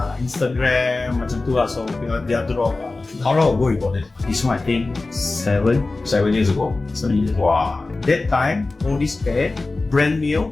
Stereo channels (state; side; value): quieter; right; 3.4 dB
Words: Instagram, macam tu lah. So they are drop. How long ago you bought it? This one I think 7 years ago. 7 years. Wow. That time, all this pair, brand new,